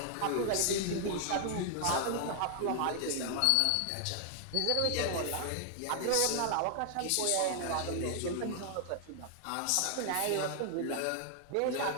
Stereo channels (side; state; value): both; different; correlation 0.00